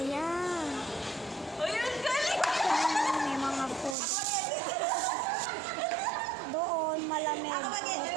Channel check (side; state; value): left; drops out; at 4.0 s